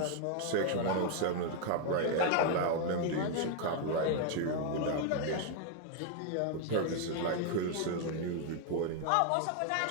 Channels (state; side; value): different; both; correlation 0.00